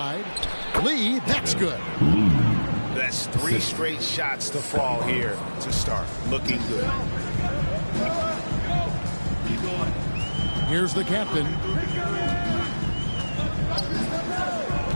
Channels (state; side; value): inverted; both; correlation -1.00